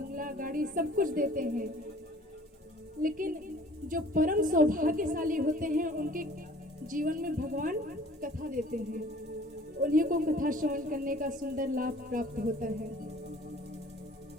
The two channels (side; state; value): both; normal; correlation 0.51